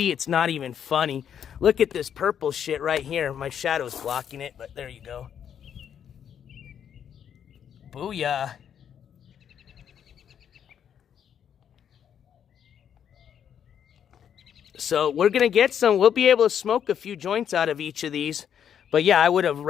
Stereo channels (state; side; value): quieter; right; 8.7 dB